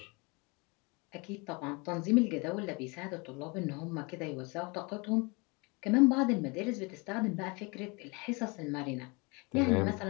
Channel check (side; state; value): right; quieter; 28.4 dB